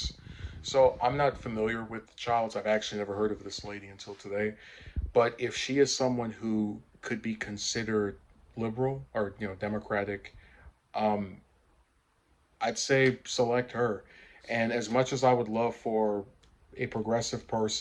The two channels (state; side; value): identical; both; correlation 1.00